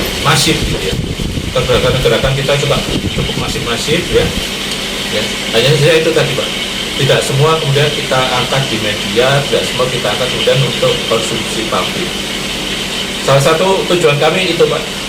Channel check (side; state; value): both; identical; correlation 1.00